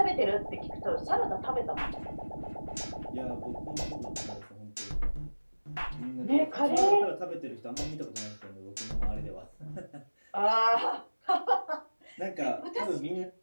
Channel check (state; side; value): inverted; both; correlation -1.00